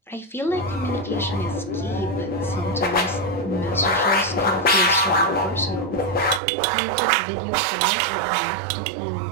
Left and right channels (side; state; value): left; drops out; at 6.4 s